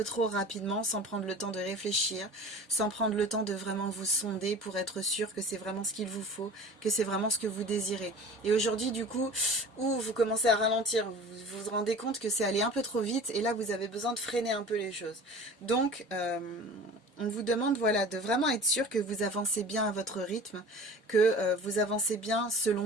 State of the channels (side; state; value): both; normal; correlation 0.40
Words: trop rapidement, sans prendre le temps de réfléchir, sans prendre le temps de vraiment vous sonder pour être sûr que c'est vraiment ce qu'il vous faut, que c'est vraiment ce que vous désirez. Et aujourd'hui, du coup, vous commencez à ralentir, vous vous rendez compte que c'est allé un peu trop vite et là, vous avez besoin de freiner un peu les choses. Donc, on vous demande voilà, de vraiment être sûr que vous avancez bien à votre rythme, que vous avancez bien selon